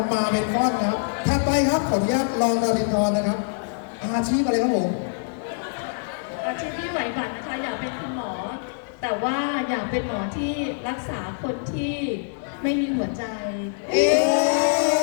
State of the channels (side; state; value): right; silent; digital silence